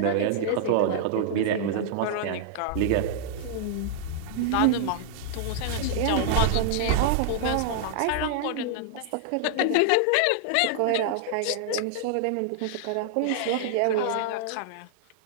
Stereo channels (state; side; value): different; both; correlation -0.01